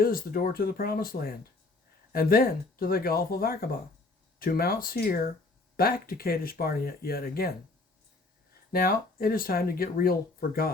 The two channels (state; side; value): quieter; right; 3.3 dB